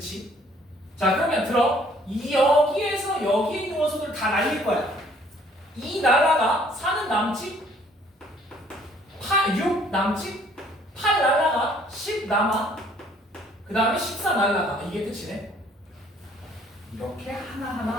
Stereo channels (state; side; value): normal; both; correlation 0.60